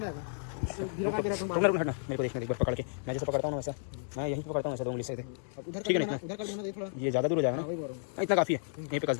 धीरे का रुकना रुकना हटना, मेरे को देखने दे एक बार पकड़ के। मैं जैसे पकड़ता हूँ ना वैसा, मैं यहीं पे पकड़ता हूँ वैसा 2 उंगली से। उधर ठीक है ना? उधर कर देना दे थोड़ा। ये ज़्यादा दूर हो जाएगा वही बोल रहा ना, इतना काफ़ी है। यहीं पे कस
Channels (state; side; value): silent; right; digital silence